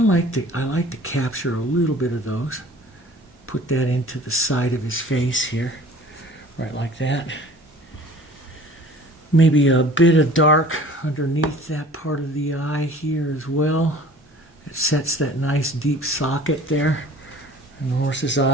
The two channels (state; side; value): normal; both; correlation 0.48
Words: like to capture a little bit of those. Put that into the side of his face here, right like that. Maybe a bit of dark underneath that part of the eye here as well. It sets that nice deep socket there in the horse's